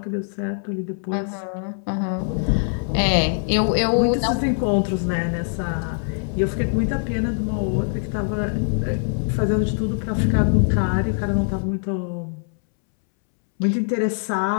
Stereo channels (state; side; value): silent; right; 64 dB below the other